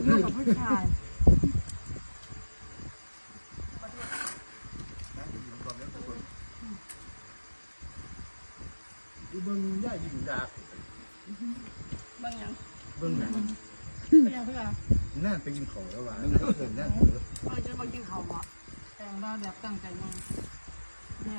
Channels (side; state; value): both; inverted; correlation -1.00